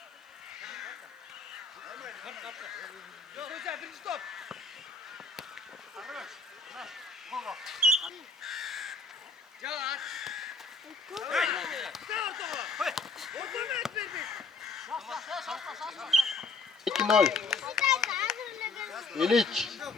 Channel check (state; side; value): quieter; right; 3.9 dB